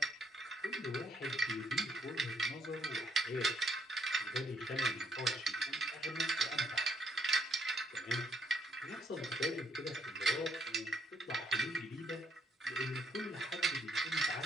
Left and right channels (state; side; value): normal; both; correlation 0.72